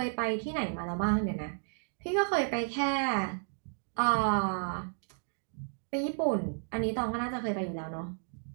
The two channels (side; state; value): left; silent; digital silence